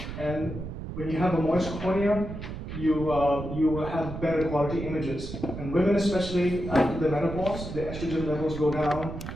And when you have a moist cornea, you will have better quality images. And women especially, after the menopause, the estrogen levels go down.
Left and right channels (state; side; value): noise; right; rumble, 8 dB below the sound